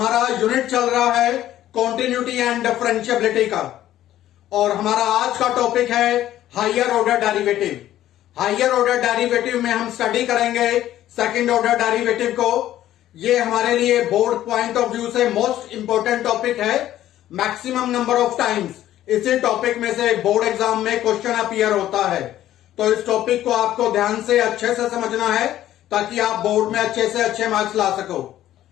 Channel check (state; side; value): quieter; right; 13.0 dB